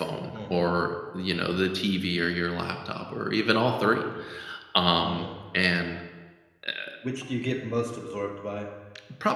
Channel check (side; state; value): both; identical; correlation 1.00